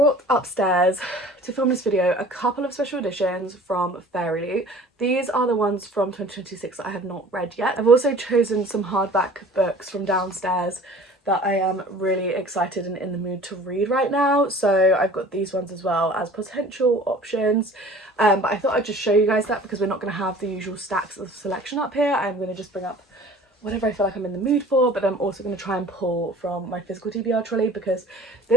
upstairs to film this video a couple of special editions from Fairy. These are the ones from 2026 that I have not read yet. I've also chosen some hardback books from downstairs that I am really excited and in the mood to read right now, so I've got these ones as well as potential options. But I thought I'd just show you guys that because we're not going to have the usual stacks of selection up here. I'm going to just bring up whatever I feel like I'm in the mood for, but I'm also going to try and pull from my physical TBR trolley because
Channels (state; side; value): normal; both; correlation 0.46